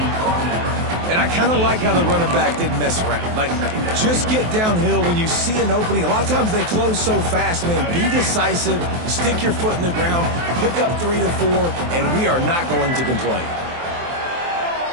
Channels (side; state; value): left; late; 23 ms